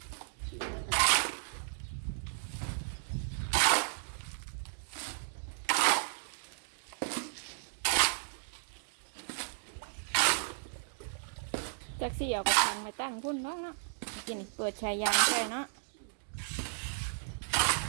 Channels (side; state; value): left; silent; digital silence